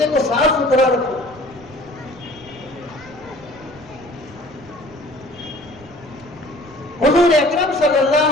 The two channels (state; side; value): noise; right; rumble, 23 dB below the sound